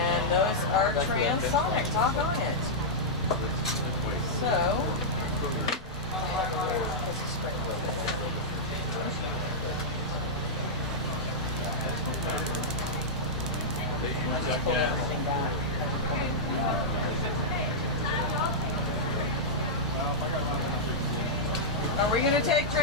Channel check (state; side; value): normal; both; correlation -0.09